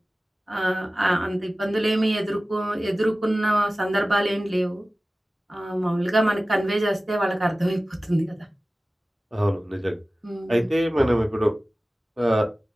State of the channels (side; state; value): both; normal; correlation 0.97